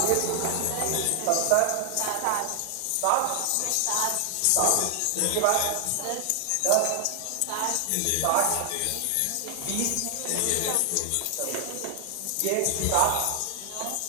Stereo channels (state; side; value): different; both; correlation 0.00